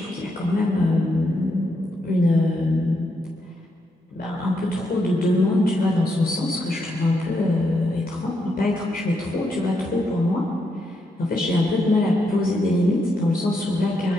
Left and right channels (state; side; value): normal; both; correlation 0.80